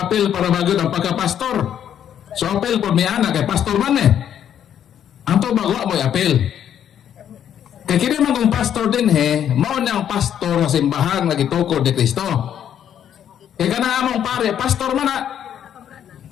para bagod ang pagka-pastor. So apil po may anak kay pastor man eh. Ang to bagwa mo apil. Kaya kini man kung pastor din mao na ang pastor sa simbahan nga gitukod ni Kristo. Kaya kana among pare, pastor man na.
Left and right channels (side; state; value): right; quieter; 9.6 dB